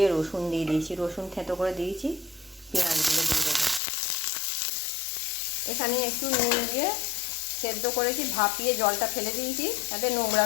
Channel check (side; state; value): right; drops out; at 3.8 s